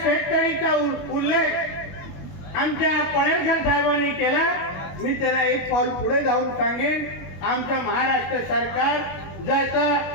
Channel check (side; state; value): right; late; 21 ms